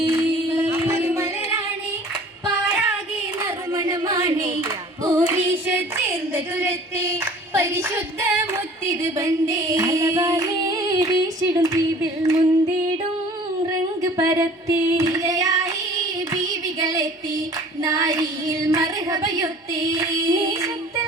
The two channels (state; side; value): normal; both; correlation 0.48